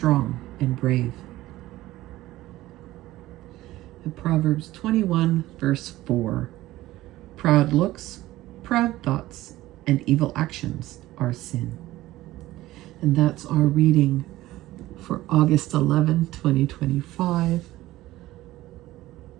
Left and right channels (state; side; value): quieter; left; 16.5 dB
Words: and brave. In Proverbs 21, verse 4, proud looks, proud thoughts, and evil actions are sin. And that's our reading for August 11, 2025.